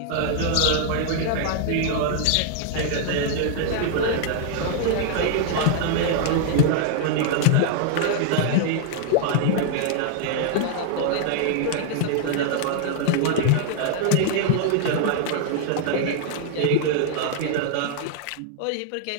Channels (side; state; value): both; different; correlation 0.00